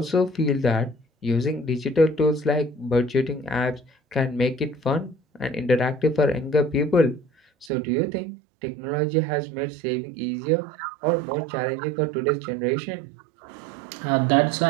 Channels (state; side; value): drops out; left; at 7.7 s